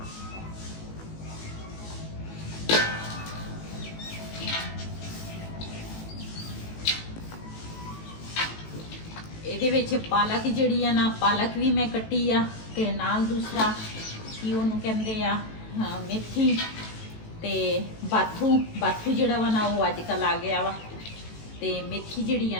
ਇਹਦੇ ਵਿੱਚ ਪਾਲਕ ਜਿਹੜੀ ਆ ਨਾ ਪਾਲਕ ਵੀ ਮੈਂ ਕੱਟੀ ਆ ਤੇ ਨਾਲ ਦੂਸਰਾ ਕੀ ਉਹਨੂੰ ਕਹਿੰਦੇ ਆ ਮੇਥੀ ਤੇ ਬਾਥੂ ਜਿਹੜਾ ਵਾ ਨਾ ਉਹ ਅੱਜ ਕੱਲ ਆ ਗਿਆ ਵਾ ਤੇ ਮੇਥੀ ਜਿਹੜੀ ਆ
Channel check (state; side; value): late; right; 18 ms